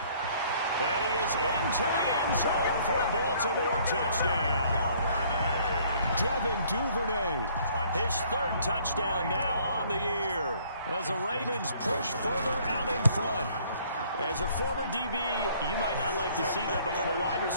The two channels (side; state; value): both; inverted; correlation -0.60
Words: And he is into the end zone for a Baltimore touchdown. Devin Duvernay, his 3rd touchdown now on the year, as the Ravens push further out in front. As a former DB, you might not like to see that, but from a wide